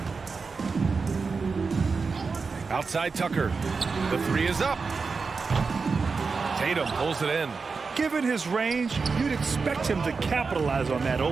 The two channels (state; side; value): quieter; left; 4.7 dB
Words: Outside Tucker. The 3 is up. Tatum pulls it in. Given his range, you'd expect him to capitalize on that